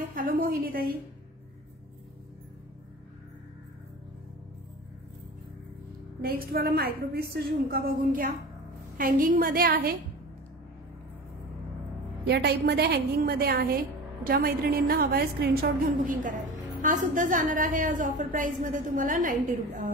हॅलो मोहिनी ताई. नेक्स्ट वाला मायक्रो पीसचा झुमका बघून घ्या. हँगिंग मध्ये आहे, या टाइप मध्ये हँगिंग मध्ये आहे. ज्या मैत्रिणींना हवाय स्क्रीनशॉट घेऊन बुकिंग करायला. हा सुद्धा जाणार आहे आज ऑफर प्राइस मध्ये तुम्हाला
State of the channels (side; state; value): both; normal; correlation 0.34